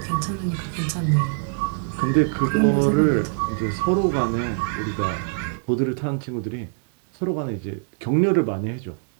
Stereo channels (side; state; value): left; silent; digital silence